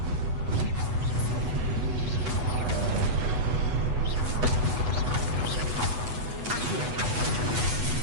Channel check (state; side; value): late; left; 8.1 ms